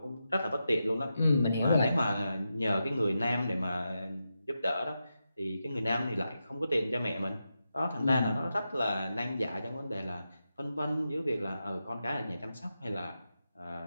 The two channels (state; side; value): inverted; both; correlation -0.88